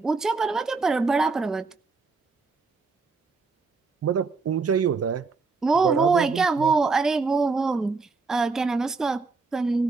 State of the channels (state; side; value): quieter; left; 4.3 dB